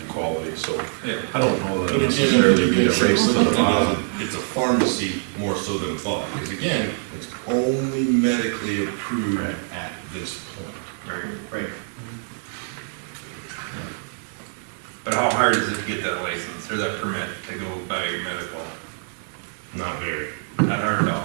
quality, so yeah. I don't know that But it's necessarily generally be a good race to the bottom. it's a pharmacy more so than thought, because again, it's only medically approved Right. at this point. Right. But how hard is it to get that license or that permit to go buy your medical? Not very. Not hard at all.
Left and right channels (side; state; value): left; silent; digital silence